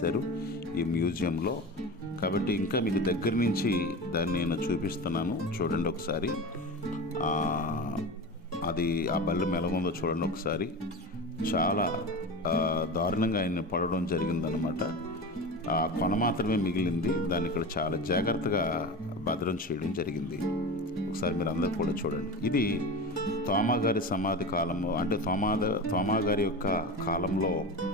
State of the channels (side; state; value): both; normal; correlation 0.28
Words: ఈ మ్యూజియంలో. కాబట్టి ఇంకా మీకు దగ్గర నుంచి దాన్ని నేను చూపిస్తున్నాను, చూడండి ఒకసారి. అది ఆ బల్లెం ఎలాగుందో చూడండి ఒకసారి. చాలా దారుణంగా ఆయన్ని పడడం జరిగిందనమాట. ఆ కొన మాత్రమే మిగిలింది. దాన్ని ఇక్కడ చాలా జాగ్రత్తగా భద్రం చేయడం జరిగింది. ఒకసారి మీరు అందరూ కూడా చూడండి. ఇది తోమా గారి సమాధి కాలంలో, అంటే తోమా గారి యొక్క కాలంలో